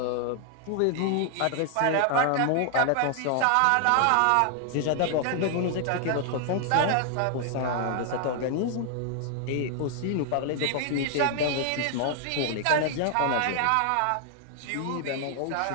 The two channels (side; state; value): both; different; correlation 0.00